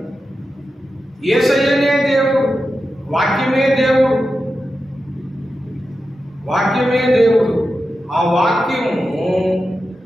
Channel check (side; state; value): both; normal; correlation 0.91